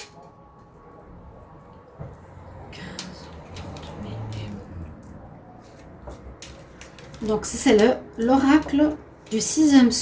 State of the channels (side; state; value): both; identical; correlation 1.00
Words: Donc, c'est l'oracle du sixième